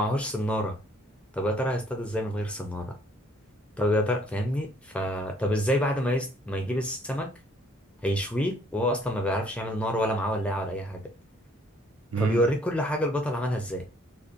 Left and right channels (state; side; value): normal; both; correlation 0.62